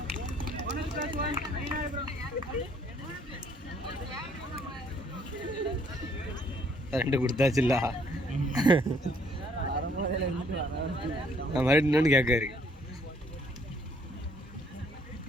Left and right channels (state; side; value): normal; both; correlation 0.64